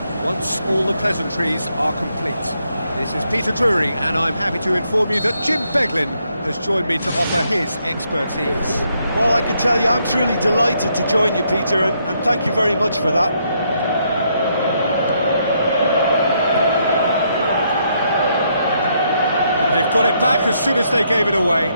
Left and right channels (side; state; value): both; inverted; correlation -0.75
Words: once all the pleasantries are complete. This is Peter Drury, and I'm happy to inform you that Jim Beglin has joined me to offer his expertise. Well, I can tell you I'm truly delighted to join you, Peter, and thank you very much for that. And they've got it back as soon as they gave it away.